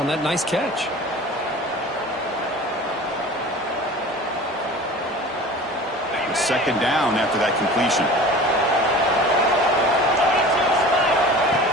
that nice catch. Second down after that completion.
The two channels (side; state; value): both; normal; correlation 0.40